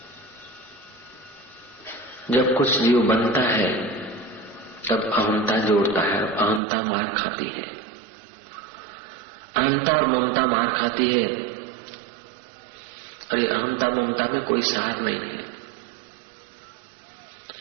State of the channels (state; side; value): drops out; left; at 6.6 s